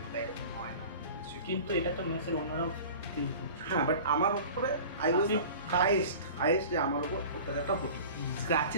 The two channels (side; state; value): both; inverted; correlation -0.40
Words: না, তাই এরকম হয় না। কিন্তু এটা তো মেসের অন্যরাও ফিল করছে। হ্যাঁ, বাট আমার উপরে আই ওয়াজ হাইয়েস্ট যে আমার উপর অত্যাচারটা হতো,